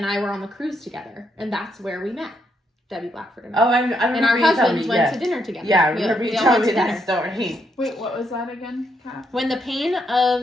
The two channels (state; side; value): normal; both; correlation 0.77